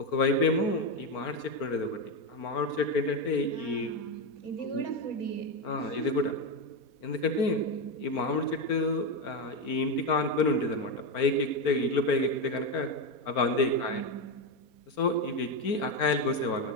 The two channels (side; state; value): right; late; 4.5 ms